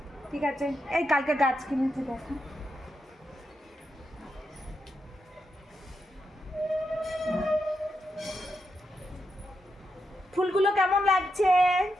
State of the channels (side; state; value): both; normal; correlation 0.85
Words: ঠিক আছে? এই কালকে গাছ কিনেছি, দেখো ফুলগুলো কেমন লাগছে।